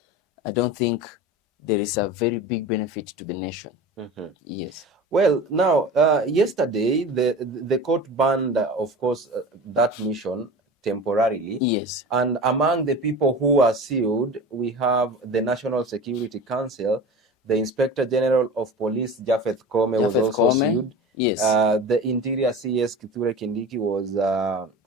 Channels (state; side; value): normal; both; correlation 0.34